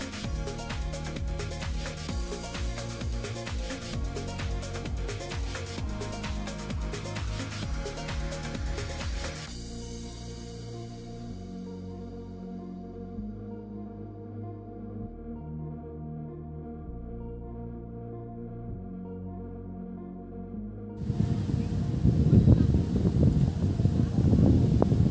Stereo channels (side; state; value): both; identical; correlation 1.00